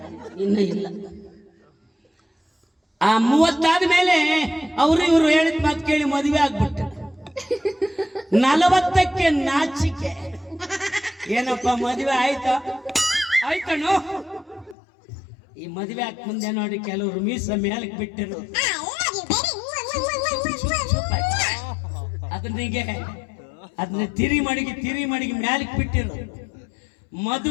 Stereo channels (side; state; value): right; drops out; at 14.8 s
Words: ಇನ್ನ ಇಲ್ಲ. ಆ 30 ಆದ್ಮೇಲೆ ಅವರು ಇವರು ಹೇಳಿದ ಮಾತು ಕೇಳಿ ಮದುವೆ ಆಗ್ಬಿಟ್ಟು, 40ಕ್ಕೆ ನಾಚಿಕೆ, ಏನಪ್ಪ ಮದುವೆ ಆಯ್ತಾ? ಆಯ್ತಣ್ಣು. ಈ ಮದುವೆ ಆಗ ಮುಂದೆ ನೋಡಿ ಕೆಲವರು ಮೀಸ ಮೇಲಕ್ಕೆ ಬಿಟ್ಟಿರು, ಅದನ್ನ ತಿರಿ ಮಡಿಗೆ ಮ್ಯಾಲಕ್ಕೆ ಬಿಟ್ಟಿರು.